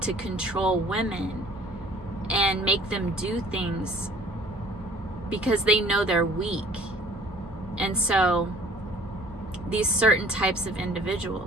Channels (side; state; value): both; normal; correlation 0.52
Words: to control women and make them do things because they know they're weak. And so these certain types of